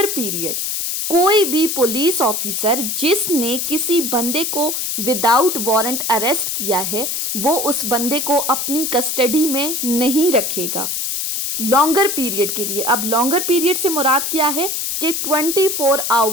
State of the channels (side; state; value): left; noise; hiss, 2 dB below the sound